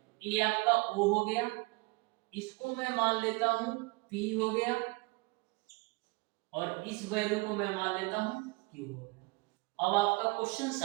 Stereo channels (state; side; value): quieter; left; 26.1 dB